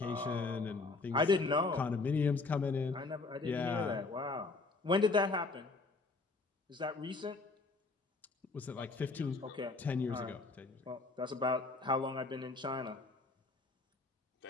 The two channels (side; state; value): right; quieter; 3.7 dB